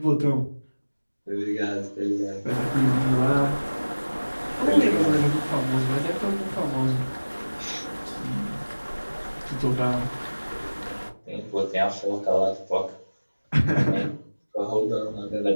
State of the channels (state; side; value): inverted; both; correlation -1.00